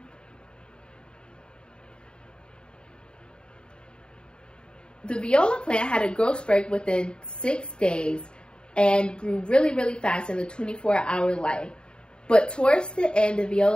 The viola plant had a growth spurt within 6 days and grew really, really fast in the 24-hour light. But towards the end, the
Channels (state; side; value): late; right; 0.050 ms